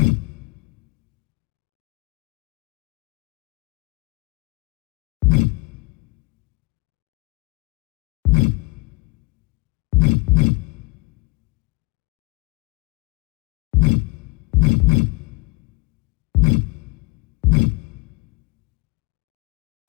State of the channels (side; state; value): right; quieter; 24.8 dB